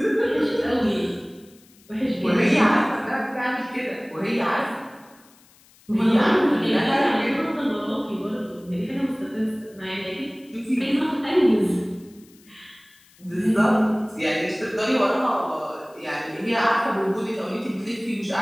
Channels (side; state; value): left; noise; hiss, 28 dB below the sound